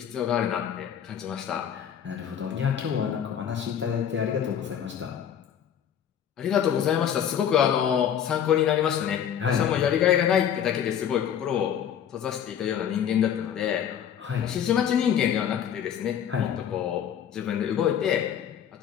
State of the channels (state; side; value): quieter; right; 9.1 dB